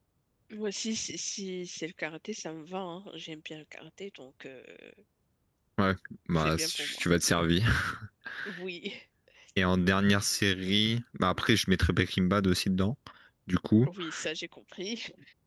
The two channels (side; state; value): both; identical; correlation 1.00